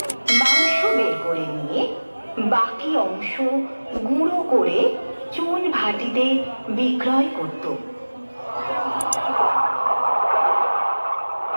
মাংস বের করে নিয়ে বাকি অংশ গুঁড়ো করে চুন ভাটিতে বিক্রয় করত।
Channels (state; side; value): inverted; both; correlation -1.00